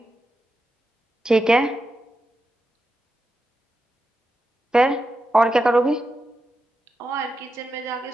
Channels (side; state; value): both; normal; correlation 0.88